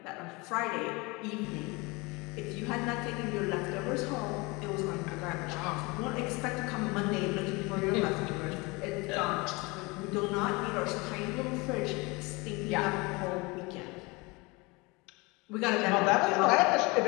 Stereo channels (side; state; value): right; quieter; 25.6 dB